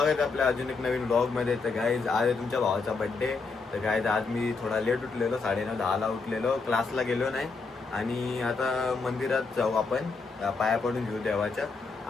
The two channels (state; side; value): quieter; right; 4.3 dB